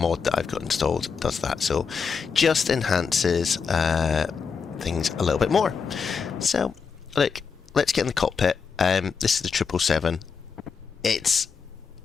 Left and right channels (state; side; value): quieter; right; 5.8 dB